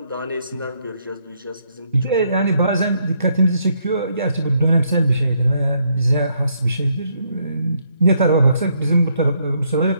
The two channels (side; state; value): both; inverted; correlation -0.73